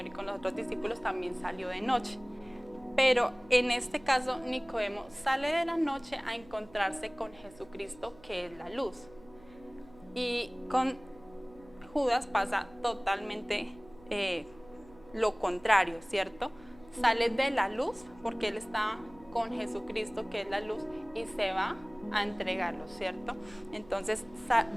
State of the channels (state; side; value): noise; right; hum, 23 dB below the sound